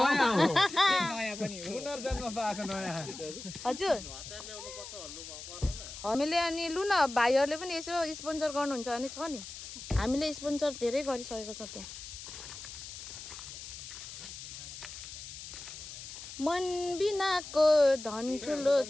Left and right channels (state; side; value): noise; left; hiss, 11 dB below the sound